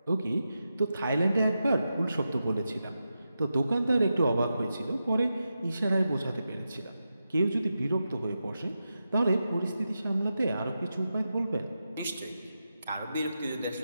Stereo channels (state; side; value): inverted; both; correlation -0.89